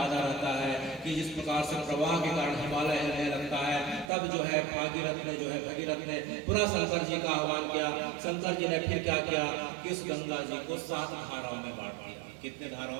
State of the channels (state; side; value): drops out; left; at 4.1 s